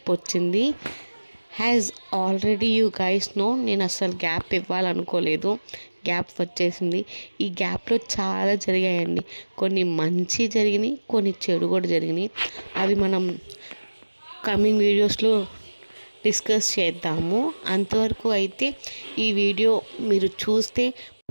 వచ్చింది. Has already you guys know, నేను అస్సలు గ్యాప్ ఇవ్వాలనుకోలేదు. గ్యాప్ వచ్చేసింది. ఈ గ్యాప్లో చాలా జరిగాయండి. కొన్ని మంచి జరిగినాయి, కొన్ని చెడు కూడా జరిగినాయి. అవి మనం కమింగ్ వీడియోస్లో డిస్కస్ చేద్దాము. అంతవరకు అయితే ఈ వీడియో మీరు చూస్తే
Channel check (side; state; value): both; inverted; correlation -1.00